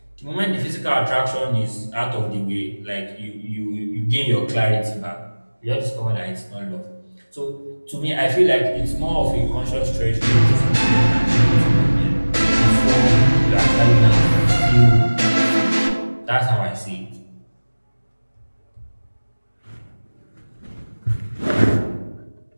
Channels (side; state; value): both; inverted; correlation -1.00